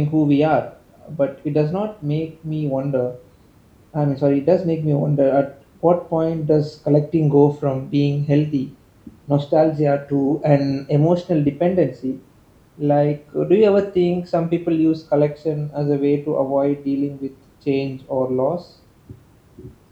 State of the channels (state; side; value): identical; both; correlation 1.00